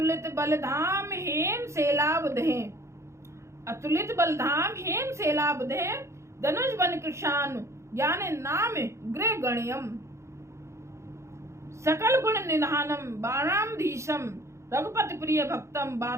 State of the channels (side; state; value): left; late; 0.14 ms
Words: बलधाम हेम सेलावधे, अतुलित बलधाम हेम सेलावधे, धनुष बन कृशान ज्ञान नाम गृह गण्यम, सकल गुण निधानम बाणामधीशम, रघुपति प्रिय भक्तम